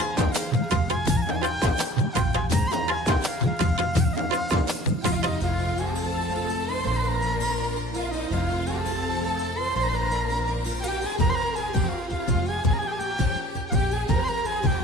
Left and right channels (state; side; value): normal; both; correlation 0.53